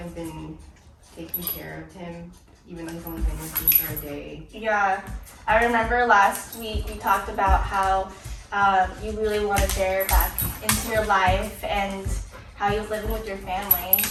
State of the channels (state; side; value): identical; both; correlation 1.00